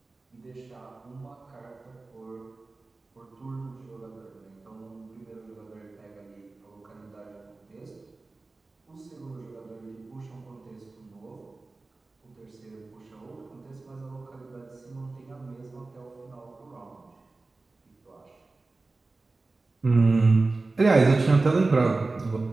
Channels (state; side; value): quieter; left; 3.4 dB